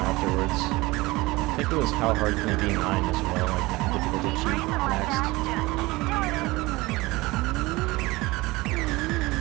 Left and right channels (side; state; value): left; quieter; 21.3 dB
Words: I think it was How Hard Can It Be 9 as well, like difficulty cheat next.